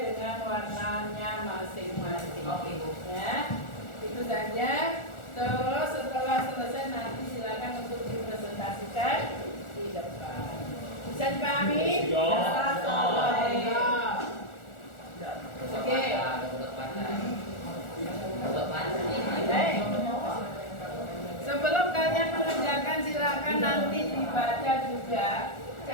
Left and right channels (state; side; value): late; right; 1.4 ms